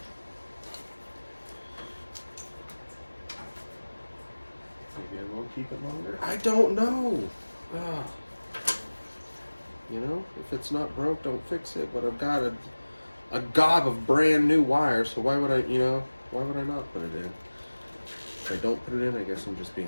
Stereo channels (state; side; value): inverted; both; correlation -1.00